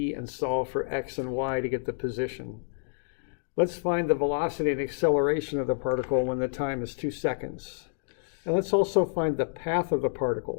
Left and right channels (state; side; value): silent; right; digital silence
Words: and solve for x and y to get the position. Let's find the velocity and acceleration of the particle when the time is 2 seconds. And let's also find the path of the